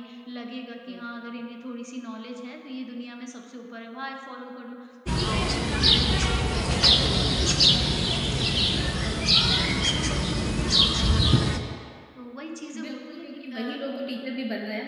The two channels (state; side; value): identical; both; correlation 1.00